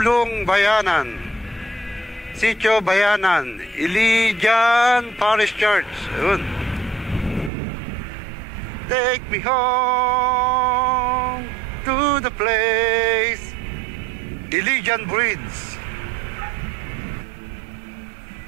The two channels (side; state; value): left; drops out; at 7.5 s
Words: Bayanan, Sitio Bayanan, Ilijan Parish Church. Ayun. Take me home to the place, Ilijan Bridge.